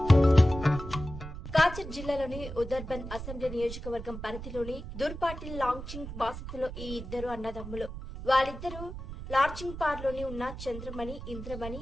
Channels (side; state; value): right; noise; rumble, 10 dB below the sound